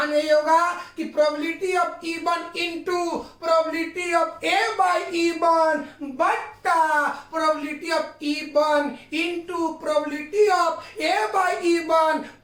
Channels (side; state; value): both; identical; correlation 1.00